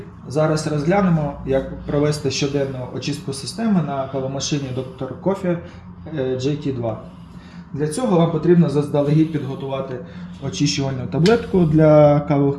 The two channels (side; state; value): both; identical; correlation 1.00